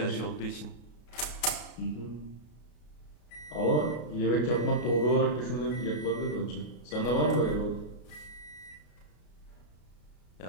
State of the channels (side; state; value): right; late; 33 ms